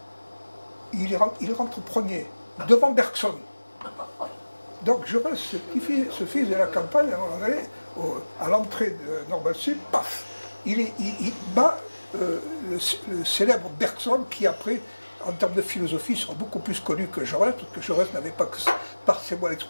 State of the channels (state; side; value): inverted; both; correlation -1.00